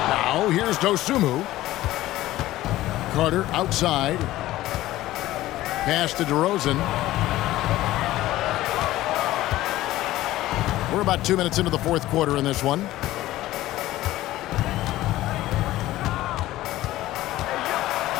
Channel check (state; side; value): quieter; right; 15.8 dB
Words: Now here's Dosunmu. Carter outside. Pass to DeRozan. We're about 2 minutes into the fourth quarter in this one.